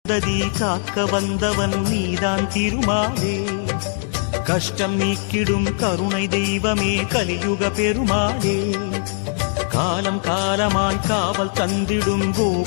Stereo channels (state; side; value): silent; right; 63 dB below the other